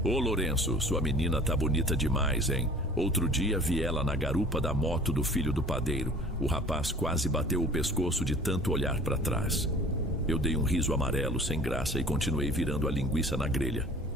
Ô Lourenço, sua menina tá bonita demais, hein? Outro dia vi ela na garupa da moto do filho do padeiro. O rapaz quase bateu o pescoço de tanto olhar para trás. Eu dei um riso amarelo sem graça e continuei virando a linguiça na grelha.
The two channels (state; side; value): normal; both; correlation 0.47